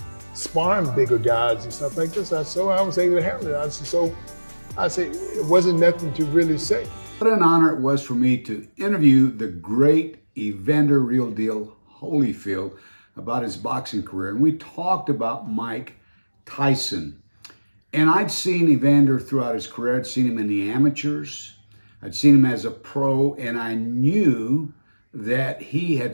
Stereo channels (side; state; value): both; inverted; correlation -1.00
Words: sparring bigger guys and stuff like this. So I was able to handle it. I said, it wasn't nothing to really say. What an honor it was for me to interview the great Evander Real Deal Holyfield about his boxing career. And we talked about Mike Tyson. And I'd seen Evander throughout his career. I'd seen him in the amateurs. I'd seen him as a pro, and I knew that he had